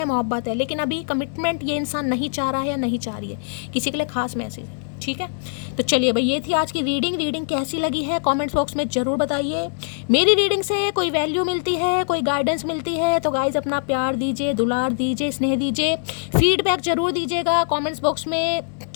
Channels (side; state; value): right; silent; digital silence